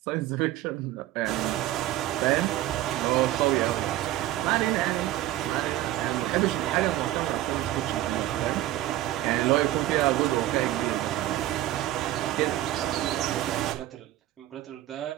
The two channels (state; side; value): quieter; left; 14.4 dB